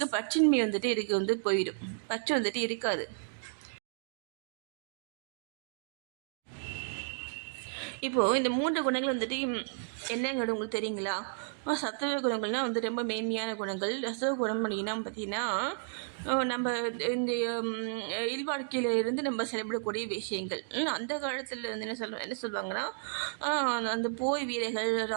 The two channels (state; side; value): silent; left; digital silence